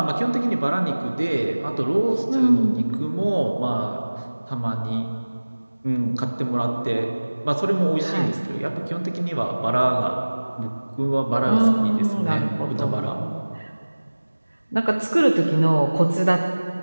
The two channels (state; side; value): inverted; both; correlation -1.00